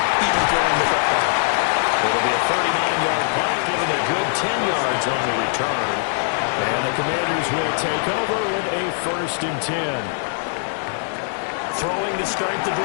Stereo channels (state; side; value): silent; right; digital silence